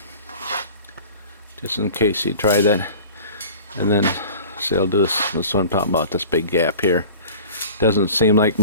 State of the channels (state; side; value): inverted; both; correlation -0.43